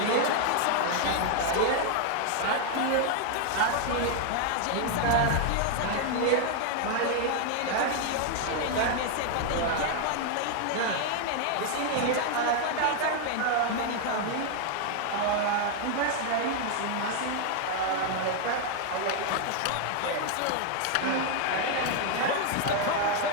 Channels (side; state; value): both; different; correlation 0.00